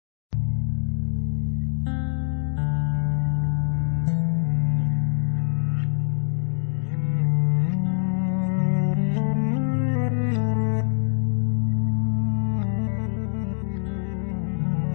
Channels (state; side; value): silent; right; digital silence